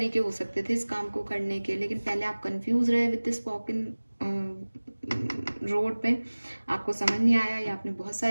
हो सकते थे इस काम को करने के, लेकिन पहले आप कंफ्यूज रहे with this walk in road पे, आपको समझ नहीं आया या आपने बहुत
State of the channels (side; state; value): both; inverted; correlation -1.00